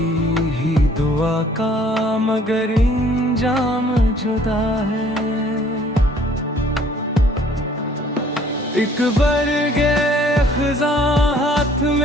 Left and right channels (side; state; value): both; normal; correlation 0.57